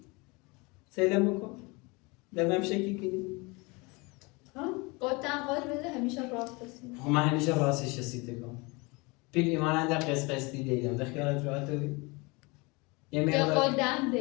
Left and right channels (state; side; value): quieter; right; 26.9 dB